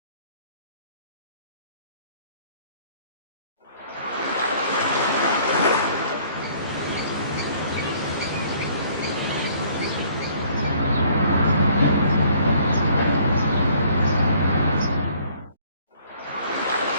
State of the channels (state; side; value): inverted; both; correlation -0.58